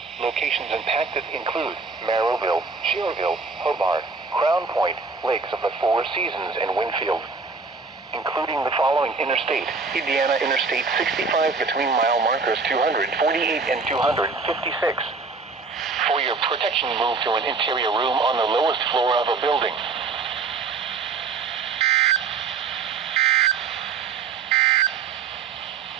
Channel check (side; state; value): left; quieter; 4.5 dB